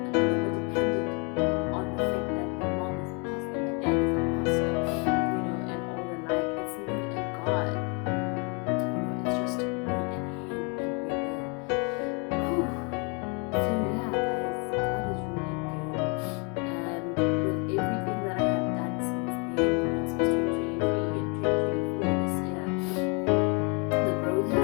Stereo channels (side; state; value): right; quieter; 33.8 dB